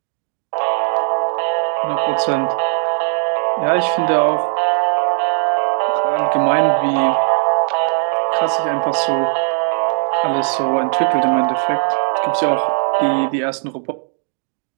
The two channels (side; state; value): left; silent; digital silence